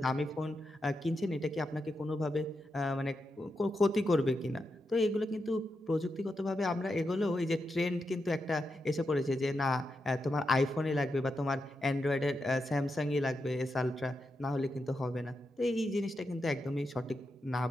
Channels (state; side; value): normal; both; correlation 0.86